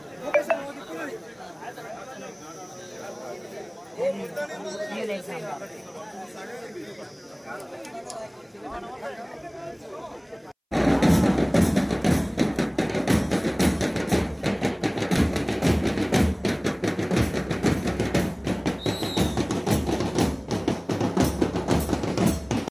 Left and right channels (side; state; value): both; identical; correlation 1.00